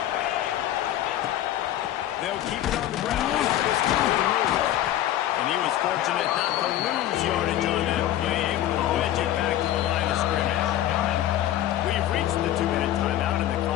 They'll keep it on the ground. And he was fortunate not to lose yardage on that play, able to wedge it back to the line of scrimmage. We've reached the 2-minute timeout, and the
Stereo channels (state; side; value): quieter; right; 12.7 dB